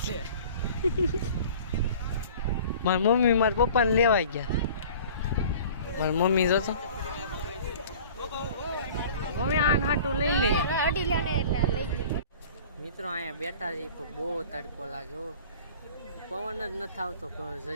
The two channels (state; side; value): inverted; both; correlation -0.44